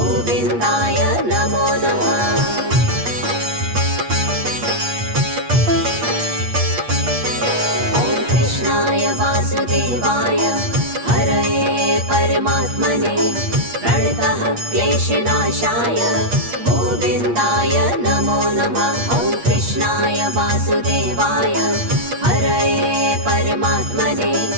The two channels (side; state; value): left; late; 8.4 ms